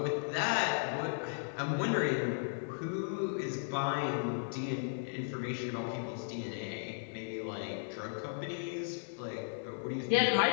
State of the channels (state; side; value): silent; right; digital silence